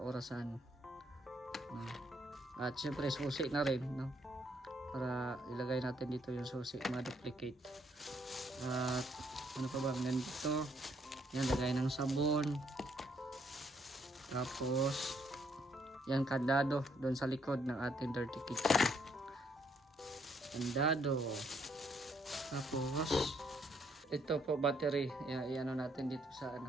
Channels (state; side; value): normal; both; correlation 0.70